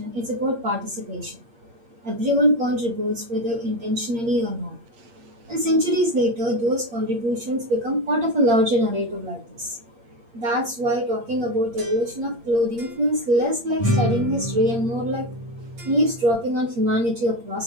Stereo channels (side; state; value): left; late; 8.6 ms